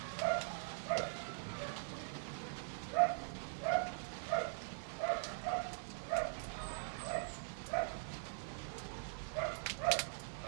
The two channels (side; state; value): left; silent; digital silence